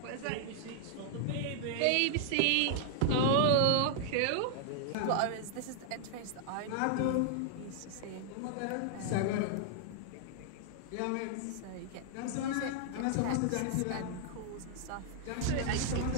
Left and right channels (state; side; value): different; both; correlation -0.01